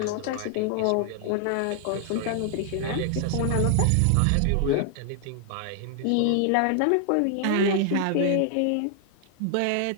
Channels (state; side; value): different; both; correlation 0.00